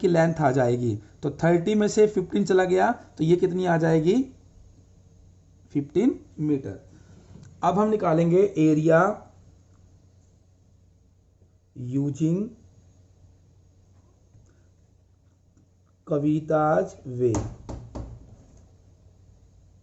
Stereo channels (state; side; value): identical; both; correlation 1.00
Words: लेंथ आ जाएगी। तो 30 में से 15 चला गया तो ये कितनी आ जाएगी, 15 मीटर। अब हम निकालेंगे एरिया यूजिंग कविताज वे।